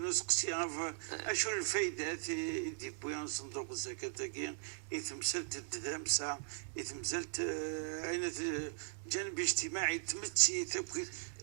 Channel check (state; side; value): silent; left; digital silence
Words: نسقسي اشو الفايده دي بويان صندوق الزكاه تاكي يتمثلت الدمسه يتمثلت اين جانب اجتماعي تمتسي تبكي